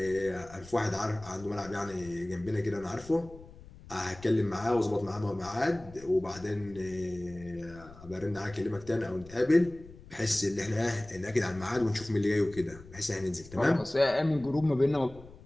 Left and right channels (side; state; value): left; noise; rumble, 19 dB below the sound